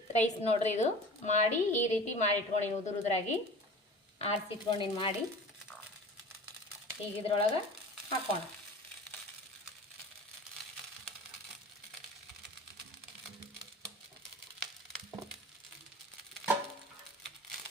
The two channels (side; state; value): both; normal; correlation 0.39